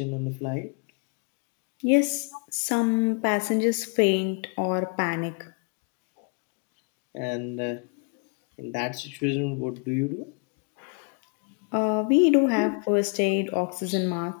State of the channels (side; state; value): right; quieter; 38.2 dB